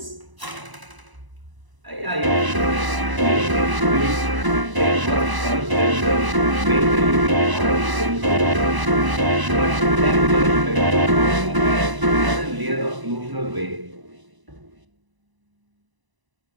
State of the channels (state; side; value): late; left; 1.0 ms